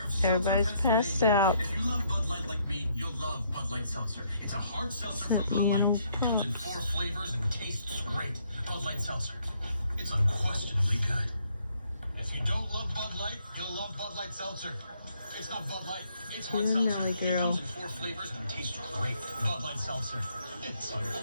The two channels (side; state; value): both; inverted; correlation -0.70